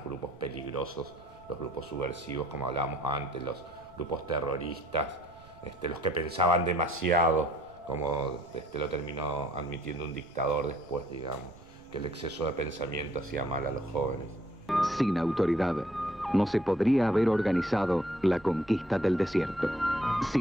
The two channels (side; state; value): right; noise; rumble, 26 dB below the sound